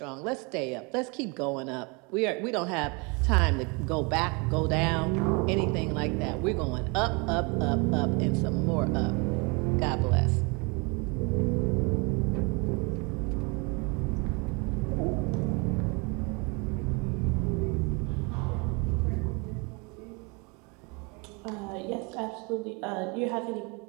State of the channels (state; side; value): quieter; left; 30.5 dB